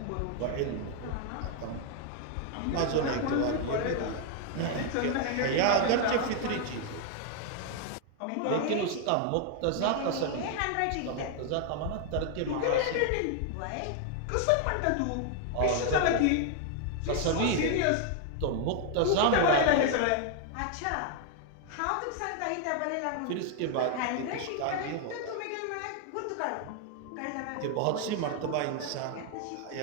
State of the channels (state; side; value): different; both; correlation 0.00